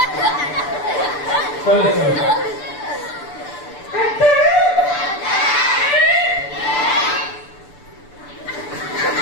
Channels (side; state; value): right; late; 6.9 ms